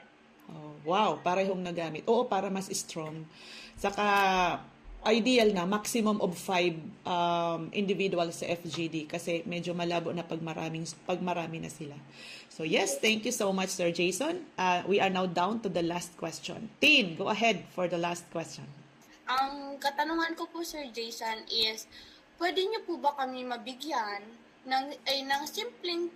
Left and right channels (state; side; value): identical; both; correlation 1.00